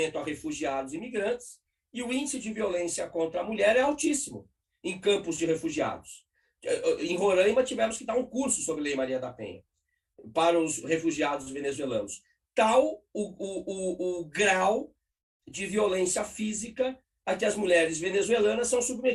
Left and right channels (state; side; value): identical; both; correlation 1.00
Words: a refugiados e imigrantes, e o índice de violência contra a mulher é altíssimo em campos de refugiados. Em Roraima, tivemos que dar um curso sobre Lei Maria da Penha para os refugiados venezuelanos. Tal o grau de violência física a que as mulheres venezuelanas são